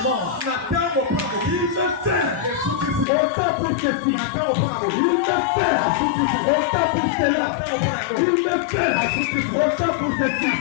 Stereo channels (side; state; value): right; drops out; at 3.1 s